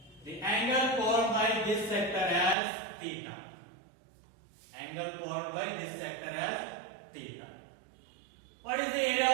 the angle formed by this sector as theta. Angle formed by this sector as theta. What is the area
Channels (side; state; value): left; drops out; at 2.6 s